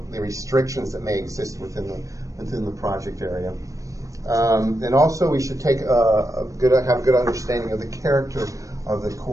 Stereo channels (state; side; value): late; left; 0.16 ms